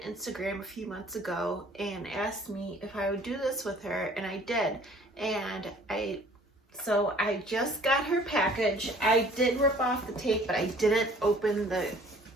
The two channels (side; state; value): both; normal; correlation 0.54